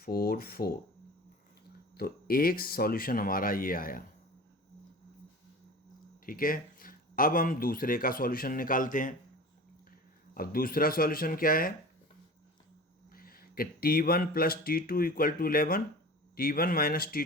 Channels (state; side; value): normal; both; correlation 0.36